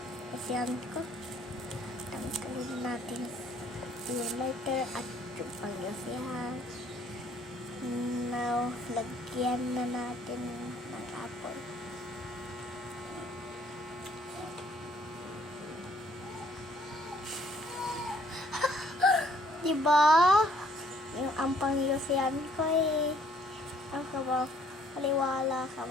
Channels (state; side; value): normal; both; correlation 0.63